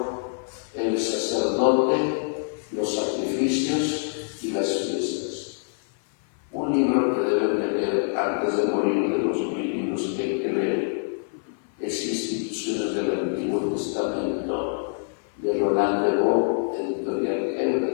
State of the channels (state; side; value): silent; right; 58 dB below the other